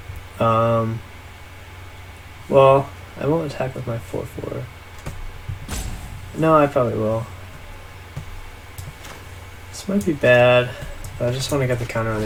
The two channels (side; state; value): both; identical; correlation 1.00